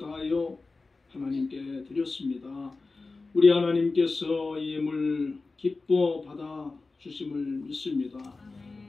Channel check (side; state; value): right; quieter; 3.7 dB